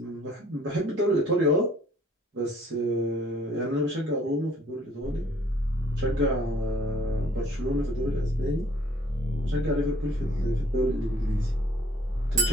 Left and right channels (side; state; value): both; normal; correlation 0.59